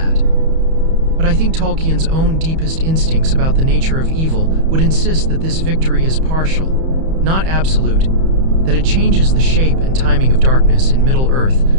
But I think Tolkien's own deepest instincts about the nature of evil would insist that this victory is partial, not absolute, that it changes the shape and timing of darkness in Middle-earth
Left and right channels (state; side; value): late; left; 31 ms